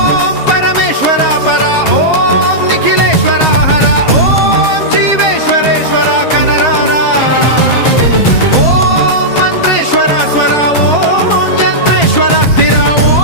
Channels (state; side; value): late; right; 7.4 ms